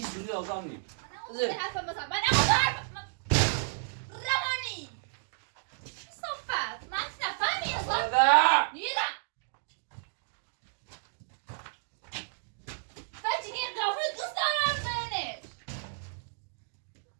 زودی آزاد نی بود من حرفم مثلا من حرفم روانی صفت من نفهمی اصلا نیدم فجی این قافل دوست دارم زنش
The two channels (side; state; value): left; silent; digital silence